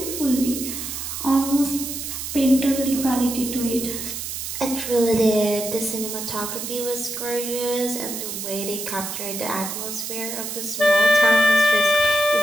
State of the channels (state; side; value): noise; right; hiss, 6 dB below the sound